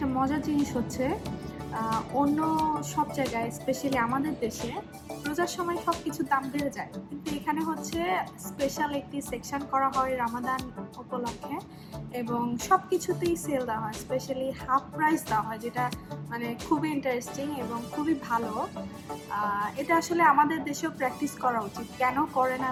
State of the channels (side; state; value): both; identical; correlation 1.00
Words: মজার জিনিস হচ্ছে, অন্য সব জায়গায় স্পেশালি আমাদের দেশে রোজার সময় সব কিছুর দাম বেড়ে যায়, কিন্তু এখানে হচ্ছে স্পেশাল একটি সেকশন করা হয় রামাদান উপলক্ষে, এবং সব কিছুতেই সেল দেওয়া হয়, স্পেশালি হাফ প্রাইস দেওয়া হয়, যেটা মানে খুবই ইন্টারেস্টিং এবং খুবই ভালো। এটা আসলে আমাদের দেশেও প্র্যাকটিস করা উচিত। কেন করে না